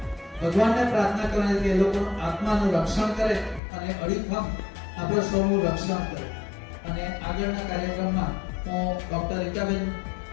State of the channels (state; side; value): drops out; right; at 3.6 s